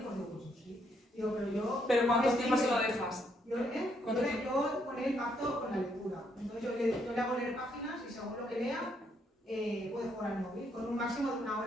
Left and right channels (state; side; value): normal; both; correlation 0.73